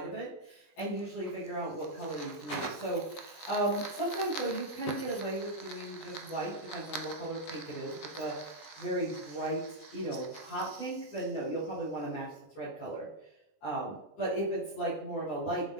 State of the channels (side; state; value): right; late; 20 ms